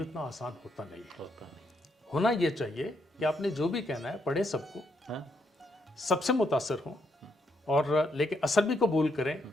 इतना आसान होता नहीं है। होना ये चाहिए कि आपने जो भी कहना है पढ़े सबको, सबसे मुतासर हों और लेकिन असर भी कबूल करें,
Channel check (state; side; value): normal; both; correlation 0.77